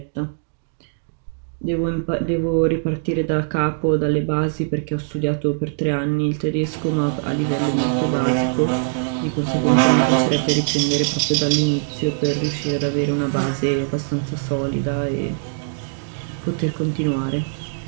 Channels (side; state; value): left; silent; digital silence